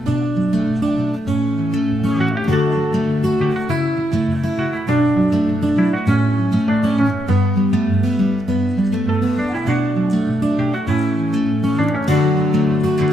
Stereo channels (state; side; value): normal; both; correlation 0.81